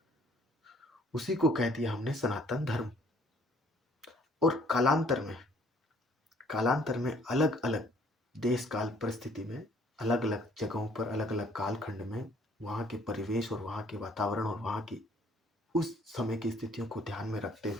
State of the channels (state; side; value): normal; both; correlation 0.61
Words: उसी को कह दिया हमने सनातन धर्म। और कालांतर में अलग अलग देश काल परिस्थिति में, अलग अलग जगहों पर, अलग अलग कालखंड में वहाँ के परिवेश और वहाँ के वातावरण और वहाँ की उस समय की स्थितियों को ध्यान में रखते